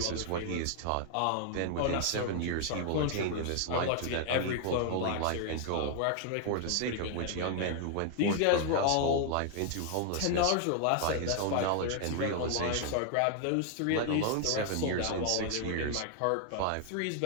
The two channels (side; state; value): both; different; correlation 0.00